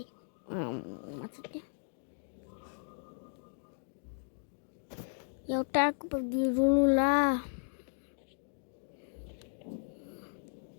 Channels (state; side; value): silent; right; digital silence